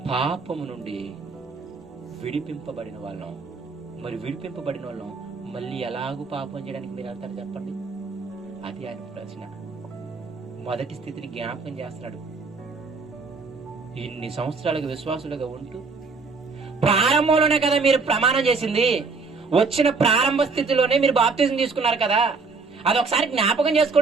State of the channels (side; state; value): left; quieter; 4.4 dB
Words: పాపము నుండి విడిపింపబడిన వాళ్ళం. మరి విడిపింపబడిన వాళ్ళం మళ్ళీ ఎలాగూ పాపం చేయడానికి మీరు వెళ్తారు చెప్పండి? అది ఆయన ప్రశ్న. మొదటి స్థితిని జ్ఞాపకం చేస్తున్నాడు. ఇన్ని సంవత్సరాలుగా విశ్వాసులుగా ఉంటూ ప్రారంభంలోనే కదా మీరు ప్రమాణం చేసింది, వచ్చిన ప్రారంభ స్థితిలోనే మీరు బాప్తిజం తీసుకున్నారు కదా, అది ఒకసారి జ్ఞాపకం